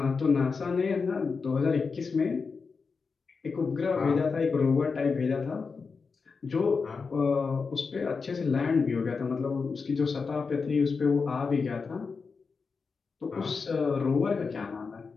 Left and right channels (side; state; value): right; quieter; 5.0 dB